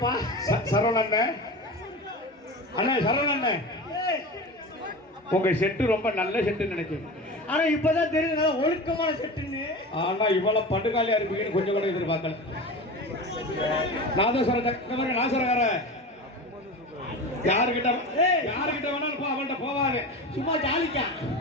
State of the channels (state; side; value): normal; both; correlation 0.30